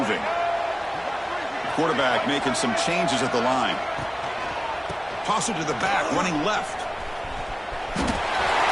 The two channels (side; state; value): both; identical; correlation 1.00